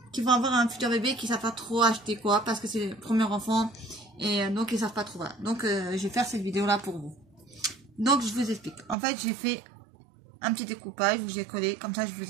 qui vont avoir un futur bébé qui ne savent pas trop acheter quoi parce que c'est le premier enfant et donc ils ne savent pas trop. Voilà. Donc, je vais faire cette vidéo là pour vous. Donc je vous explique. En fait j'ai fait un petit découpage où j'ai collé. Comme ça je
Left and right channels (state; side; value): drops out; left; at 9.0 s